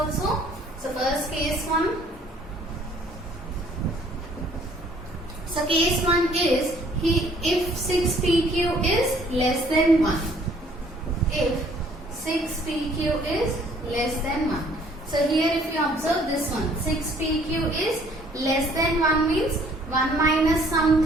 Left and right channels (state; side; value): normal; both; correlation 0.59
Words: So first case 1. So case 1 is if 6 PQ is less than 1. If 6 PQ is less than 1. So here if you observe this one, 6 PQ is less than 1 means 1 minus